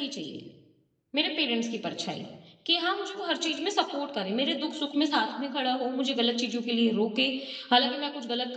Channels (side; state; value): both; identical; correlation 1.00